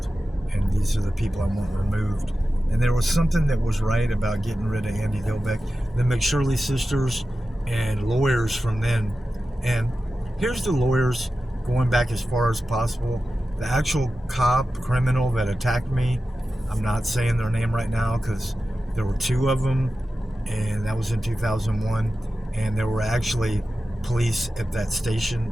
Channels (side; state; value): both; normal; correlation 0.93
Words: and these are the people I want removed. And there was something that was right about getting rid of Andy Dilbeck, the McShirley sisters, and lawyers from then. And here's the lawyers going back as far as possible. The actual criminal that attacked me, I'm not saying their name right now because there were two of them, and that was in 2001. And there were actually police at that station